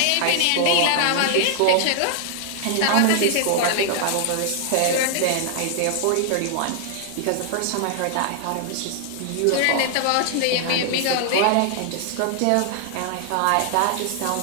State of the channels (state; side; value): different; both; correlation 0.00